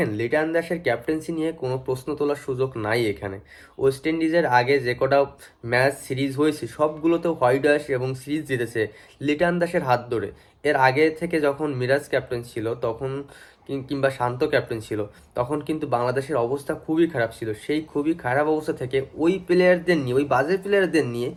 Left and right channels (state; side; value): identical; both; correlation 1.00